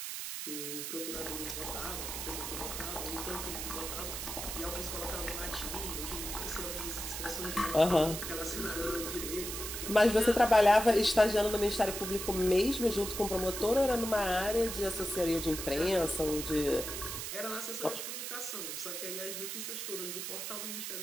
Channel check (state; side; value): noise; right; hiss, 5 dB below the sound